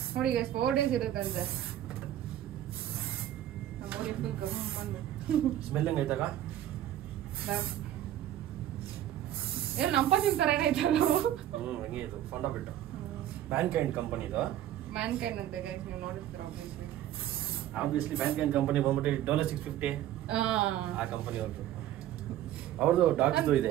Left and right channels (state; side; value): quieter; left; 12.3 dB